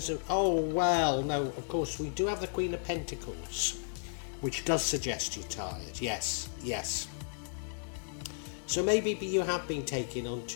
of, of course we do have the Queen of Pentacles, which does suggest you're tired. Yes. So maybe you have been taking on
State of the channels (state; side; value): silent; right; digital silence